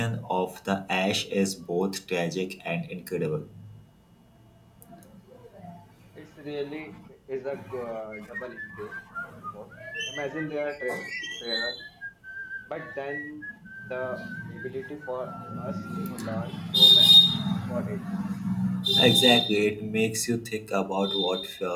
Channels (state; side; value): identical; both; correlation 1.00